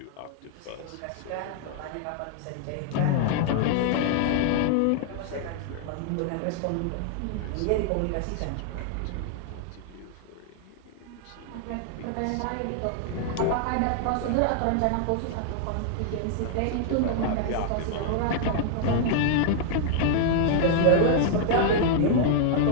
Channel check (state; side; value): different; both; correlation -0.01